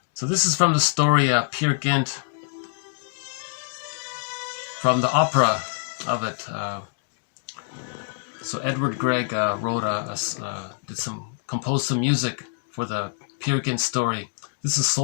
So this is from the story Peer Gynt, from the opera of it. So Edward Grieg composed some music for the Peer Gynt story. This is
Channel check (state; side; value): silent; right; digital silence